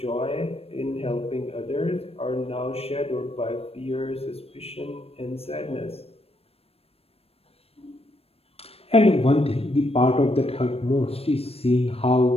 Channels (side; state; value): right; late; 0.28 ms